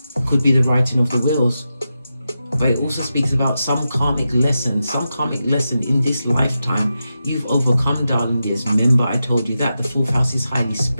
Could be the writing of the wills. But it also speaks about some karmic lesson in this lifetime you've overcome, darling dears. Remember, I told you that the 4th house is highly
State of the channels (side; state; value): both; inverted; correlation -0.90